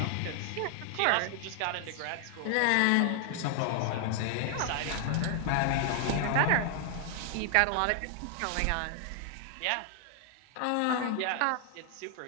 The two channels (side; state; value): both; different; correlation 0.00